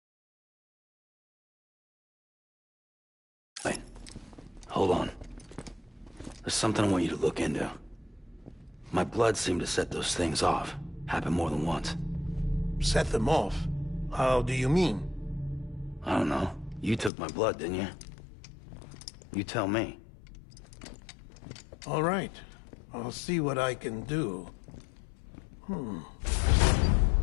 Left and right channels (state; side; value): drops out; right; at 17.1 s